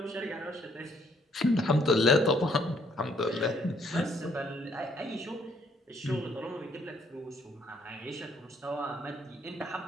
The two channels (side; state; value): both; normal; correlation 0.67